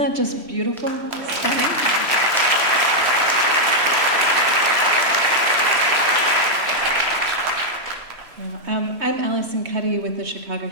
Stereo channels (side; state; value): left; late; 3.1 ms